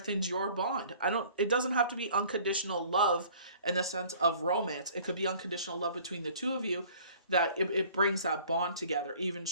your bond. It doesn't have to be unconditional love in the sense of romance. It could be unconditional love between the two of you that it brings that bond together even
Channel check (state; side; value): inverted; both; correlation -0.51